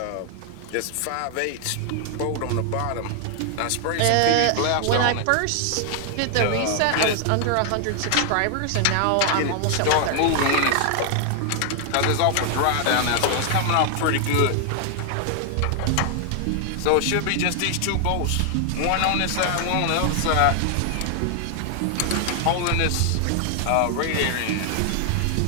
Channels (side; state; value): both; different; correlation 0.00